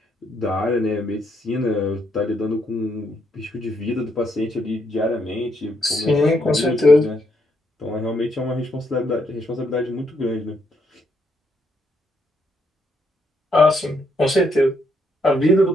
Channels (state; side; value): normal; both; correlation 0.75